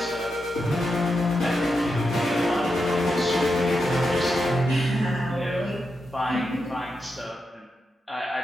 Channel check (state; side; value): normal; both; correlation 0.86